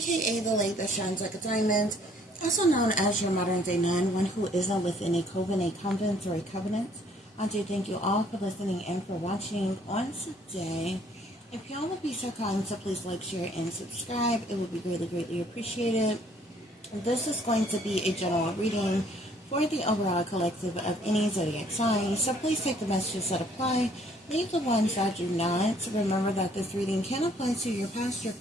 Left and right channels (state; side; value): normal; both; correlation 0.61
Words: the lady that shines like a diamond, also known as your modern day nun, one who isn't within a coven, a convent, or a covenant. I do thank you all for listening and for watching on today. If y'all would be so kind to please like, share, and subscribe, it would be greatly, greatly appreciated. This is going to be a general reading for the overall collective of any zodiac sign, so please take the messages that apply, leave the ones that do not. Remember that this reading can apply to your past, your